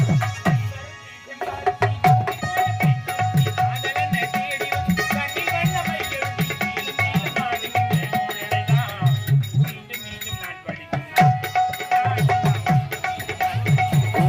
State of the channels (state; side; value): identical; both; correlation 1.00